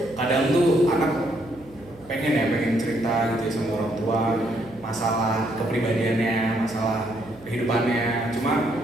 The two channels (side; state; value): right; noise; hum, 22 dB below the sound